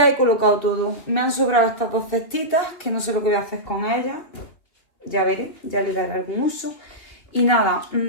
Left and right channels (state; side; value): late; right; 3.1 ms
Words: he colocado todo. Me han sobrado estas dos cestitas, que no sé lo que voy a hacer con ellas. Ya veré, ya le daré algún uso. Y nada,